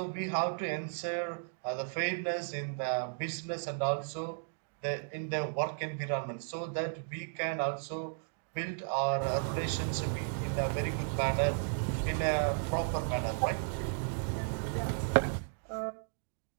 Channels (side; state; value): left; silent; digital silence